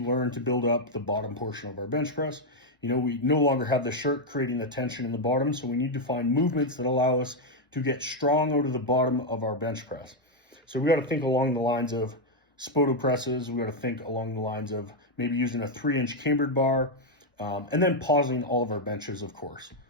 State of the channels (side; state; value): both; normal; correlation 0.01